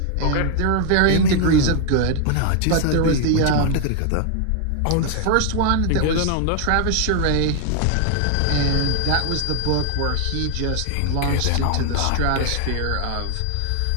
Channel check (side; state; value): both; different; correlation 0.00